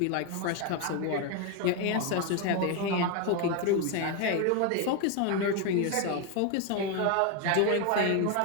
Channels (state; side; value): different; both; correlation 0.01